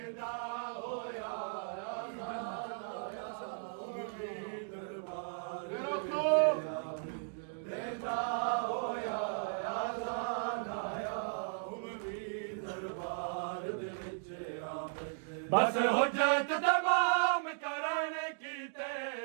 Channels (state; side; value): silent; left; digital silence